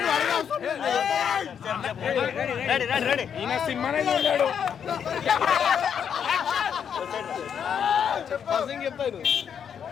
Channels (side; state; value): right; quieter; 7.9 dB